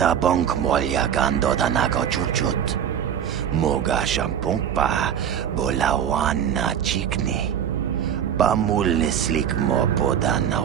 bonk molya gando danago chuchut. Moga shampongpa bolawan na chikni. Pamul slik mo poda na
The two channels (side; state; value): left; quieter; 9.0 dB